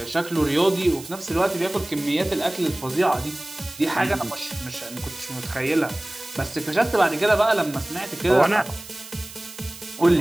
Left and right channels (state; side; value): noise; right; hiss, 16 dB below the sound